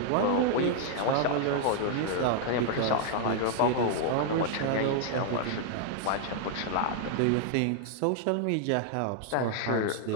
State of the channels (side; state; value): both; different; correlation 0.00